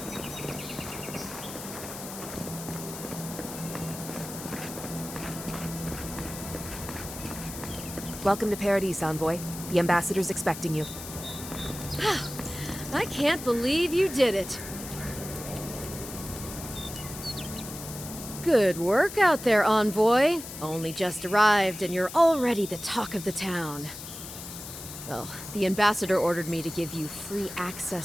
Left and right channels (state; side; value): noise; left; hiss, 11 dB below the sound